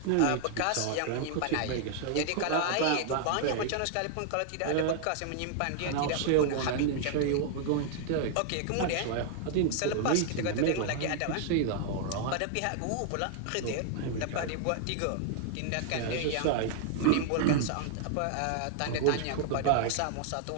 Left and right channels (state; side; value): different; both; correlation 0.00